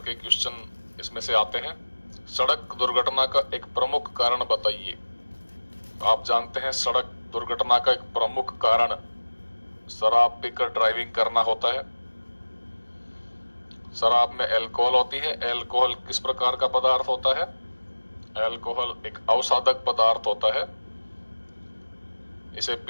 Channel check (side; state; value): both; inverted; correlation -1.00